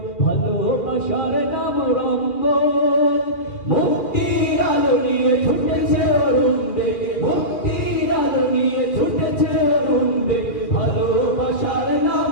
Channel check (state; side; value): late; right; 2.4 ms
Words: ভালোবাসার নাম রঙ্গন। মুক্তির আলো নিয়ে ছুটেছে অরুণ বেগে, মুক্তির আলো নিয়ে ছুটেছে অরুণ বেগে, ভালোবাসার নাম